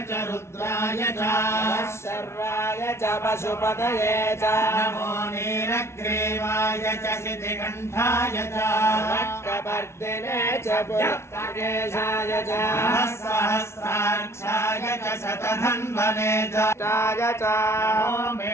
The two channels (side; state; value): right; late; 0.13 ms